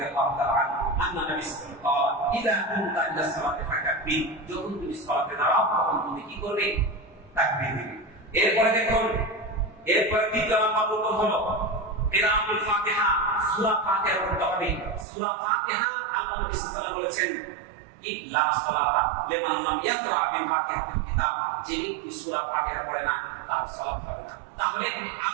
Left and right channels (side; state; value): left; drops out; at 15.1 s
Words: তাআলা আন্না নবী সাল্লাল্লাহু আলাইহি ওয়াসাল্লাম ইদা কুনতা ইলা সালাতি ফাকাব্বির, যখন তুমি সালাতে দাঁড়াও তখন তুমি কি করবে, তাকবীর দিবে। এরপরে দেখুন, এরপরে দ্বিতীয় নাম্বার রুকুন হলো কিরাআতুল ফাতিহা, সূরা ফাতিহা পড়তে হবে। সূরা ফাতিহা আল্লাহ নবী সাল্লাল্লাহু আলাইহি ওয়াসাল্লাম বলেছেন, ইল্লা সালাতা লিমান লাম ইয়াকরা বিফাতিহাতিল কিতাব, যে ব্যক্তি সূরা ফাতিহা পড়ে না তার সালাত হবে না। তাহলে